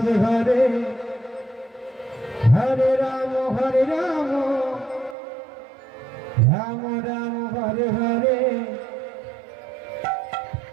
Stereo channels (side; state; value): left; drops out; at 5.2 s